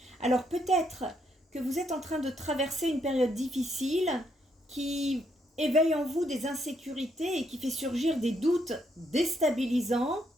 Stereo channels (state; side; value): normal; both; correlation 0.75